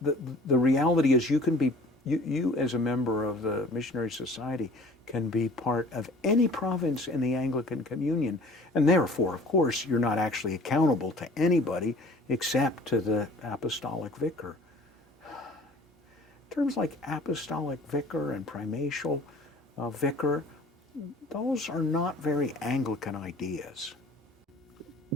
reality is you as a member of the Missionary Society can be part of any province in the Anglican Communion, and therefore, of course, you're not actually accountable to anybody except to the apostolic vicar. Terms like apostolic vicar and primatial vicar, those are not very Anglican ideas.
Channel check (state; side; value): normal; both; correlation 0.49